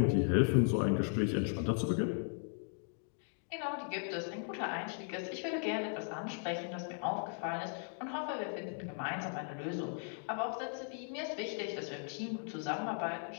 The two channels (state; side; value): silent; right; 53 dB below the other